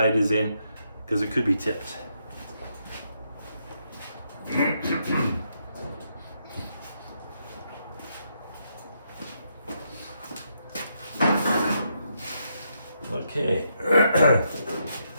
is in, because it could be tipped. Okay.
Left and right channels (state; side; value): inverted; both; correlation -0.79